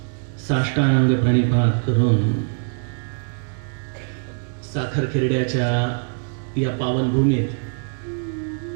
साष्टांग प्रणिपात करून साखर खेरड्याच्या या पावनभूमीत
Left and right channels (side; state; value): left; silent; 59 dB below the other